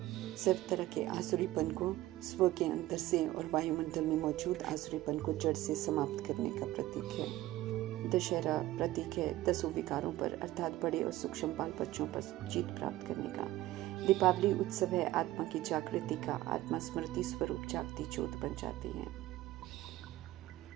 सर्व तरह के आसुरीपन को स्व के अंदर से और वायुमंडल में मौजूद आसुरीपन को जड़ से समाप्त करने का प्रतीक है। दशहरा प्रतीक है 10 विकारों पर अर्थात बड़े और सूक्ष्म बाल बच्चों पर जीत प्राप्त करने का। दीपावली उत्सव है आत्मा की जागृति का, आत्मा स्मृति स्वरूप जागती ज्योत बन जाती है।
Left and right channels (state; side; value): quieter; left; 16.1 dB